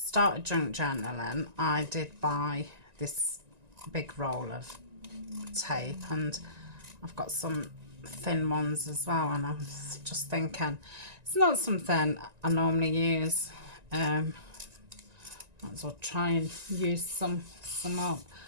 started junk journaling, I did buy this big roll of tape, and I've got some thin ones as well, and I'm just thinking it's not something I normally use. Might as well try and use some up. I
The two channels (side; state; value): left; late; 1.9 ms